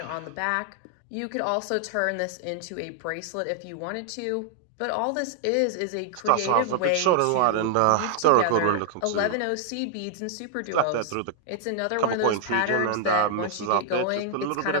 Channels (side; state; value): both; different; correlation -0.01